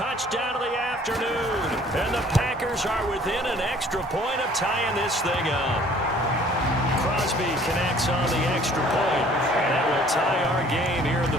of the afternoon. And the Packers are within an extra point of tying this thing up. Crosby connects on the extra point. And that will tie our game here in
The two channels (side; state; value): both; normal; correlation 0.55